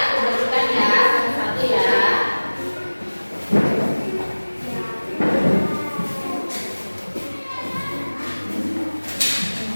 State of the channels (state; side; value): inverted; both; correlation -1.00